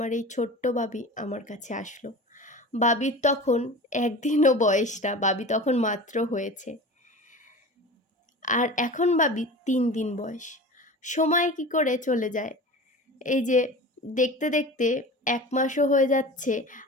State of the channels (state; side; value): normal; both; correlation 0.35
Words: এই ছোট্ট বাবি আমার কাছে আসলো। বাবির তখন 1 দিনও বয়স না, বাবি তখন মাত্র হয়েছে। আর এখন বাবির 3 দিন বয়স। সময় কি করে চলে যায়! এই যে দেখতে দেখতে 1 মাসও হয়ে যাচ্ছে,